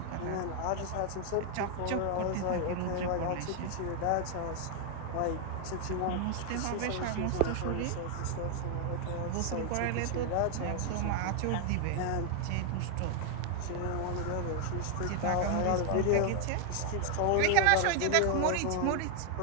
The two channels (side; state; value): both; different; correlation 0.00